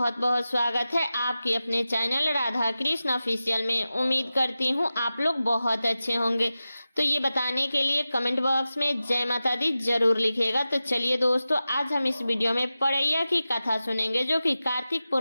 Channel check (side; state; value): both; inverted; correlation -0.94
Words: बहुत स्वागत है आपके अपने चैनल राधा कृष्ण ऑफिशियल में। उम्मीद करती हूँ आप लोग बहुत अच्छे होंगे। तो ये बताने के लिए कमेंट बॉक्स में जय माता दी जरूर लिखिएगा। तो चलिए दोस्तों, आज हम इस वीडियो में पड़ैया की कथा सुनेंगे, जो कि कार्तिक